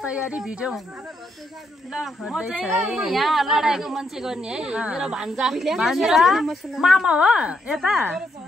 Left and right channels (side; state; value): both; normal; correlation 0.77